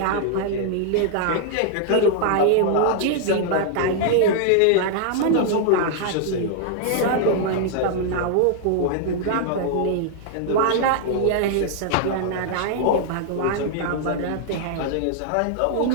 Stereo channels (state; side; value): different; both; correlation -0.01